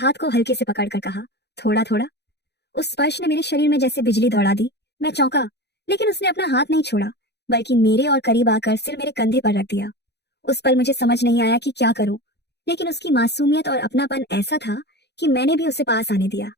को हल्के से पकड़कर कहा, थोड़ा थोड़ा। उस स्पर्श ने मेरे शरीर में जैसे बिजली दौड़ा दी। मैं चौंका, लेकिन उसने अपना हाथ नहीं छोड़ा, बल्कि मेरे और करीब आकर सिर मेरे कंधे पर रख दिया। उस पल मुझे समझ नहीं आया कि क्या करूं, लेकिन उसकी मासूमियत और अपनापन ऐसा था कि मैंने भी उसे पास आने दिया।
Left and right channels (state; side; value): late; right; 0.49 ms